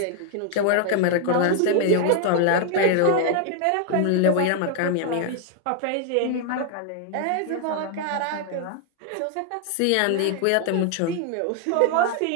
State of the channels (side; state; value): both; different; correlation 0.00